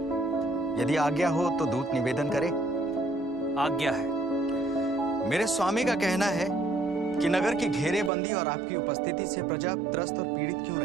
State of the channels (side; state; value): left; drops out; at 8.1 s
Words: यदि आज्ञा हो तो दूत निवेदन करे। आज्ञा है। मेरे स्वामी का कहना है कि नगर की घेरेबंदी और आपकी उपस्थिति से प्रजा त्रस्त और पीड़ित क्यों